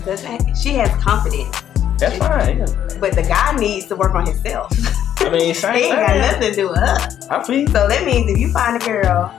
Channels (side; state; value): right; quieter; 10.4 dB